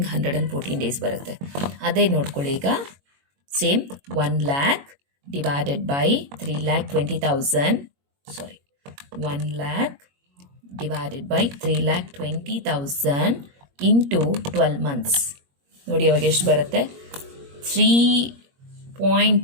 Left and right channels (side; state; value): left; late; 21 ms